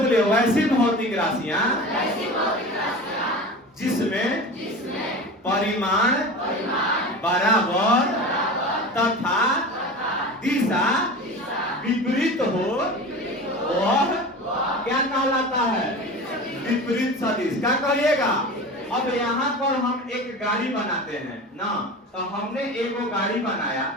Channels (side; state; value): both; normal; correlation 0.32